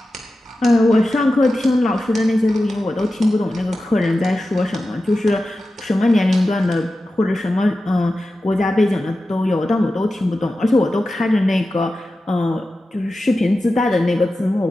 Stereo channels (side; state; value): both; normal; correlation 0.93